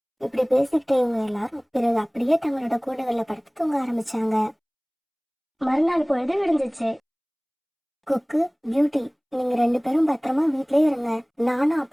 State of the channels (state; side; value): identical; both; correlation 1.00